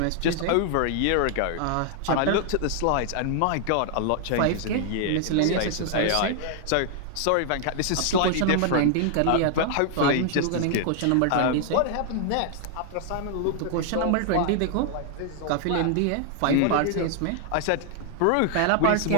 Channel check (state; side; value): different; both; correlation 0.00